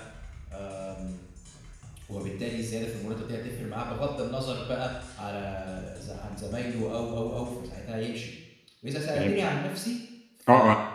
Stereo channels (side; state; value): both; identical; correlation 1.00